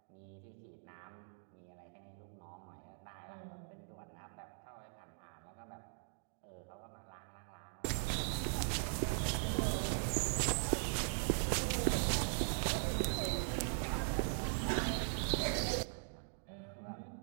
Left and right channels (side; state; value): left; silent; digital silence